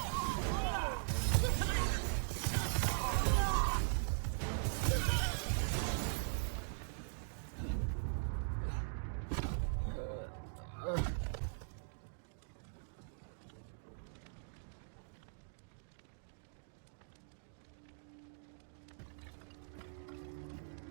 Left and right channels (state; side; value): silent; left; digital silence